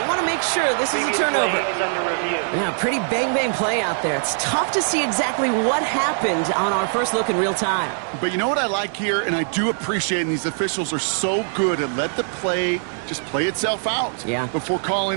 want to make sure this is a turnover. Yeah, pretty bang-bang play out there. It's tough to see exactly what happened on our first look in real time. But you know what I like here, and I do appreciate, and these officials are so good at let the play just play itself out before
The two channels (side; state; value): left; silent; digital silence